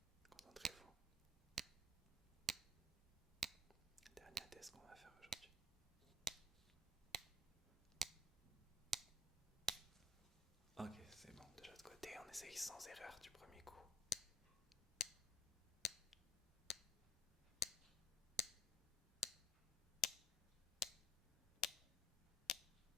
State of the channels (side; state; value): both; normal; correlation 0.54